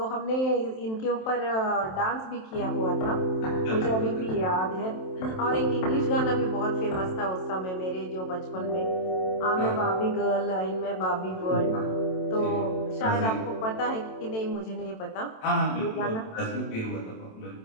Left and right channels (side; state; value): right; late; 27 ms